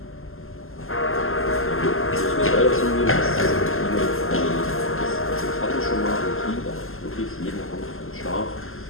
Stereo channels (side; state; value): right; late; 0.61 ms